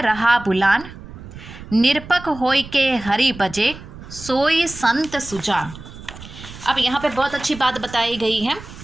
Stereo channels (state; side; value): noise; right; rumble, 15 dB below the sound